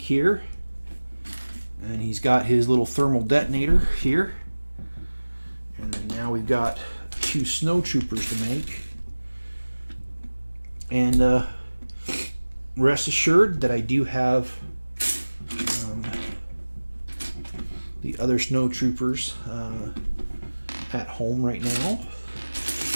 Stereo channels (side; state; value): both; inverted; correlation -1.00